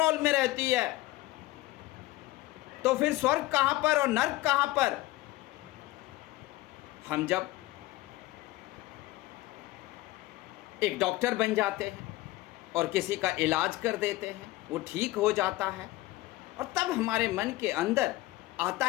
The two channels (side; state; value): right; quieter; 17.8 dB